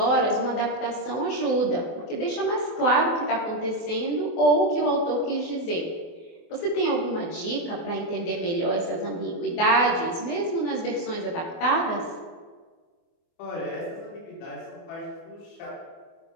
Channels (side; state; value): right; late; 24 ms